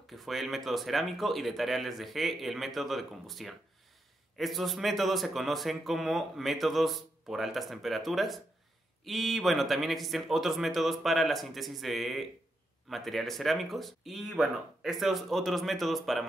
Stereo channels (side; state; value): both; normal; correlation 0.83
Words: que fue el método cerámico, y de tarea les dejé el método de combustión. Estos métodos se conocen como métodos por altas temperaturas y bueno, también existen otros métodos para la síntesis de materiales cerámicos y bueno, estos otros métodos para